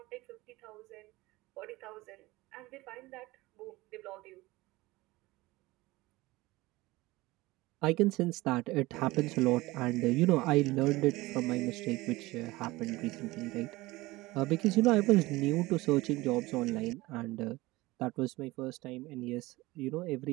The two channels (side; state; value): left; quieter; 20.3 dB